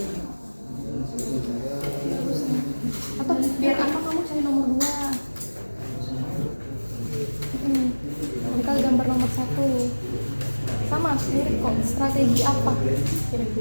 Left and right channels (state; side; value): inverted; both; correlation -1.00